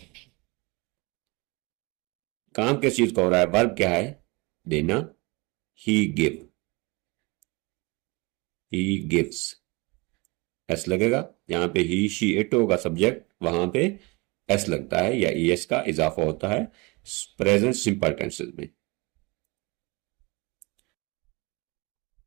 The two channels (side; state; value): left; quieter; 26.4 dB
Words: काम किस चीज का हो रहा है? वर्ब क्या है? देना। ही गिव। He gives. एस लगेगा। यहां पे ही शी इट होगा सब्जेक्ट, वहां पे एस लगता है या एस का इजाफा होता है प्रेजेंट सिंपल टेंसेस में।